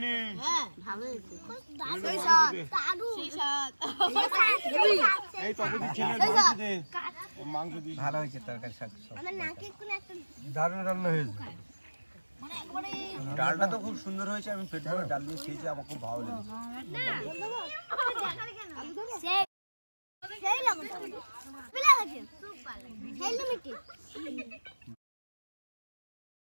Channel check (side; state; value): both; inverted; correlation -1.00